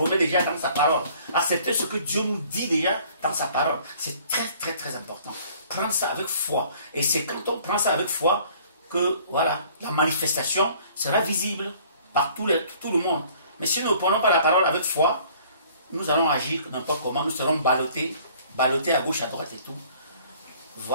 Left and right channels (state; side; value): inverted; both; correlation -0.55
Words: déjà dans sa parole. Accepter ce que Dieu nous dit déjà dans sa parole. C'est très, très, très important. Prendre ça avec foi. Et c'est quand on prend ça avec foi que, voilà, la manifestation sera visible par tout le monde. Mais si nous ne prenons pas la parole avec foi, nous allons agir n'importe comment, nous serons ballottés à gauche, à droite et tout.